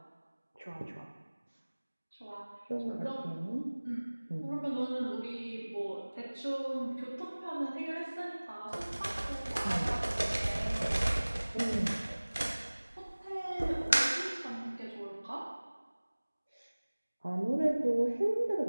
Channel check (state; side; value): inverted; both; correlation -1.00